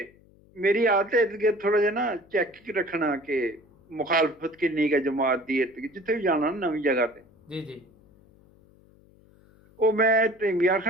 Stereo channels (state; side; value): noise; left; hum, 29 dB below the sound